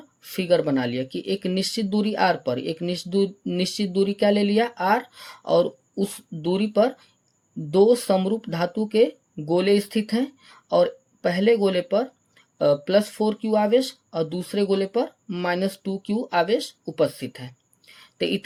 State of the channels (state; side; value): identical; both; correlation 1.00